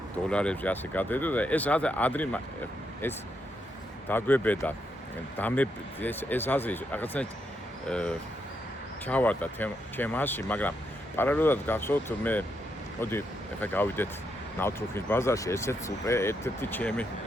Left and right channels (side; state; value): both; normal; correlation 0.80